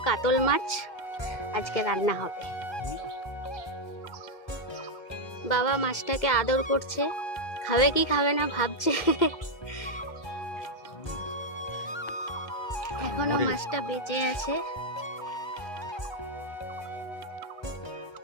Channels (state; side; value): late; right; 1.3 ms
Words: কাতল মাছ আজকে রান্না হবে। বাবা মাছটাকে আদর করছে, খাবে কি খাবে না ভাবছে। এখনো মাছটা বেঁচে আছে।